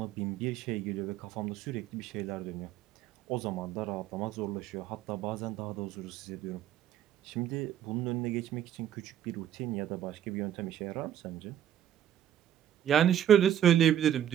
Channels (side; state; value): left; quieter; 10.7 dB